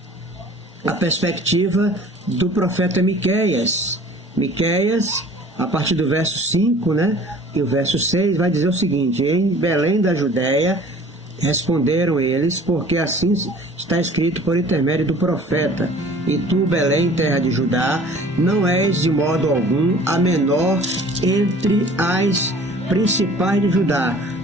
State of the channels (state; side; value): normal; both; correlation 0.48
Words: a perspectiva do profeta Miqueias. Miqueias, a partir do verso 5, e o verso 6, vai dizer o seguinte: em Belém da Judéia responderam eles, porque assim está escrito por intermédio do profeta: e tu, Belém, terra de Judá, não és de modo algum a menor entre as principais de Judá,